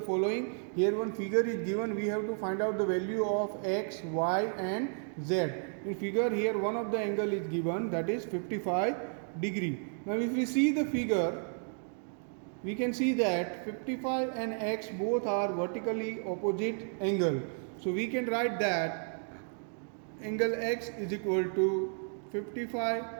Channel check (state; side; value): silent; left; 56 dB below the other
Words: following. Here one figure is given. We have to find out the value of x, y and z. In figure here one of the angle is given, that is 55 degree. Now if we see the figure, we can see that 55 and x both are vertically opposite angle. So we can write that angle x is equal to